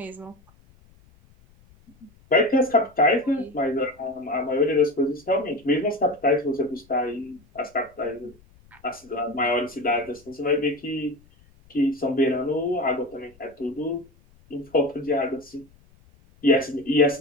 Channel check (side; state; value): left; noise; rumble, 29 dB below the sound